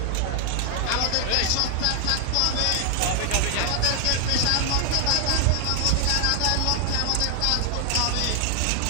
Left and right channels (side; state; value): both; different; correlation 0.00